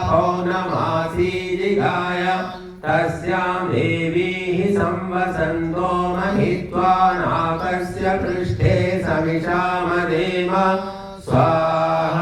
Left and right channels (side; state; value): both; identical; correlation 1.00